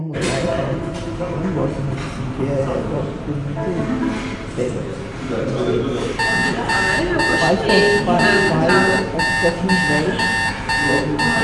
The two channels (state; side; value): identical; both; correlation 1.00